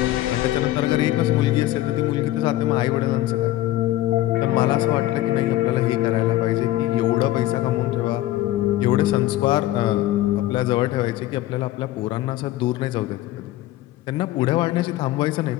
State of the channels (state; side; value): quieter; right; 15.2 dB